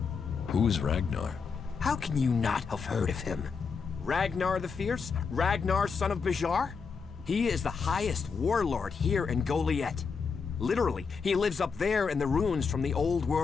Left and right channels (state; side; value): quieter; right; 5.5 dB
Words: Who is Ragnar? How can you not have heard of him? Ragnar the Fierce? Ragnar, son of Bajar? He is the highest warlord here in Goliath. Literally, he lives up there in the ruins from the old